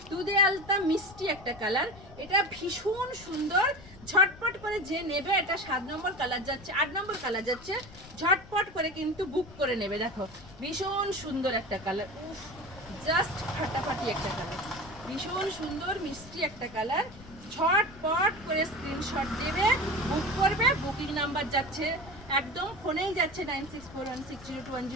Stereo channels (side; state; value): left; noise; rumble, 19 dB below the sound